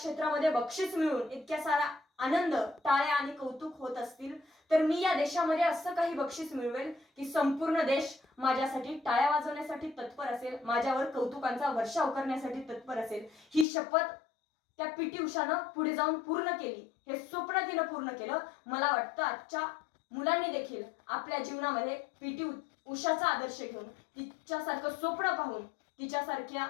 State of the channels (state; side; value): drops out; right; at 13.7 s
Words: बक्षीस मिळून इतक्या सारा आनंद, टाळ्या आणि कौतुक होत असतील तर मी या देशामध्ये असं काही बक्षीस मिळवेल की संपूर्ण देश माझ्यासाठी टाळ्या वाजवण्यासाठी तत्पर असेल, माझ्यावर कौतुकांचा वर्षाव करण्यासाठी तत्पर असेल. ही शपथ त्या पीटी उषानं पुढे जाऊन पूर्ण केली. हे स्वप्न तिनं पूर्ण केलं. मला वाटतं आजच्या मुलांनी देखील आपल्या जीवनामध्ये पीटी उषाचा आदर्श घेऊन, तिच्यासारखं स्वप्न पाहून, तिच्यासारख्या